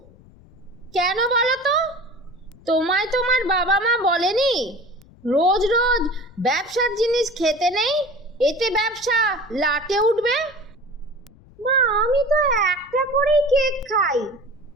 কেন বলো তো? তোমায় তোমার বাবা মা বলেনি রোজ রোজ ব্যবসার জিনিস খেতে নেই, এতে ব্যবসা লাটে উঠবে? মা, আমি তো একটা করেই কেক খাই,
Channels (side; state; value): left; noise; rumble, 25 dB below the sound